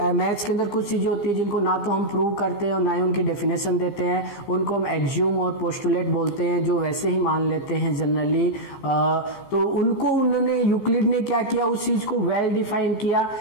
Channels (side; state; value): right; late; 15 ms